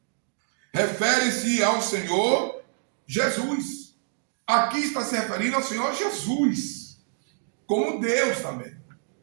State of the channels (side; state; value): left; silent; digital silence